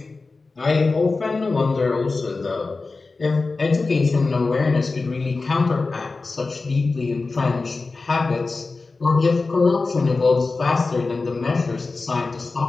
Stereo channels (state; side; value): quieter; right; 3.8 dB